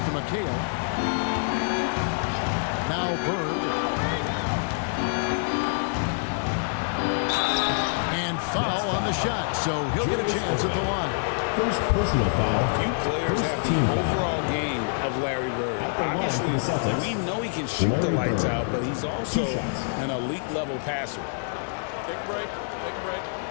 to McHale. Now Bird. And foul on the shot, so he'll get a chance at the line. First personal foul. Few players have the overall game of Larry Bird. Obviously, we know he can shoot the lights out, but he's also an elite level passer. Take a break. Take a break.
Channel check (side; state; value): right; silent; 61 dB below the other